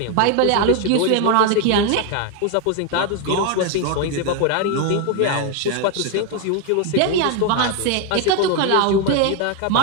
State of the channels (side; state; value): both; different; correlation 0.01